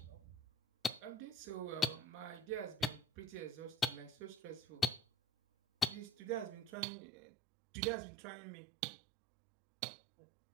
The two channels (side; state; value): left; drops out; at 6.7 s